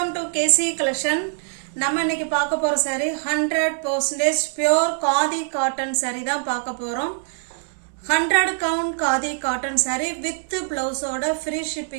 டு கேசி கலெக்ஷன். நம்ம இன்னைக்கு பார்க்க போற saree 100% pure khadi cotton saree தான் பார்க்க போறோம். 100 count khadi cotton saree with பிளவுஸோட ஃப்ரீ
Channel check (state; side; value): silent; left; 63 dB below the other